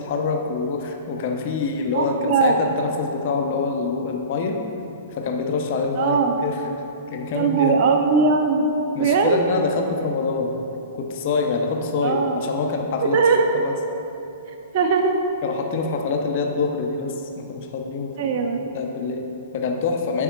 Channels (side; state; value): both; inverted; correlation -0.36